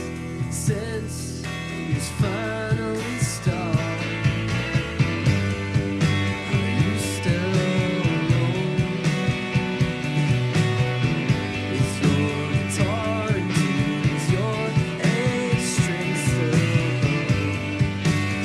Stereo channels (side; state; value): both; identical; correlation 1.00